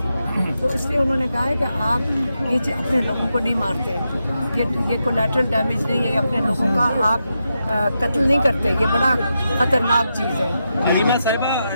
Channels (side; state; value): both; inverted; correlation -0.86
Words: تو اس لیے انہوں نے کہا ہے کہ آپ یہ اپنے لوگوں کو نہیں مارتے، یہ کولیٹرل ڈیمیج نہیں ہے، یہ اپنے لوگوں کا آپ قتل نہیں کرتے، یہ بڑا خطرناک چیز ہے۔ حلیمہ